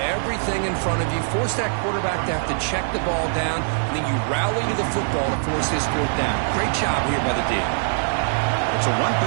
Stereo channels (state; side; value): silent; left; digital silence